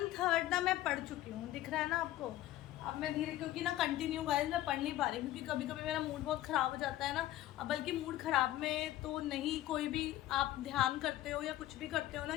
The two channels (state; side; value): quieter; right; 14.5 dB